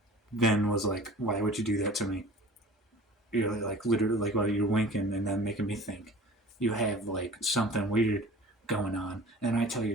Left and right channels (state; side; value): normal; both; correlation 0.44